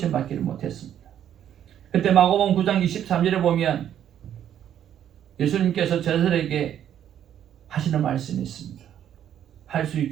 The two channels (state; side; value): quieter; left; 10.2 dB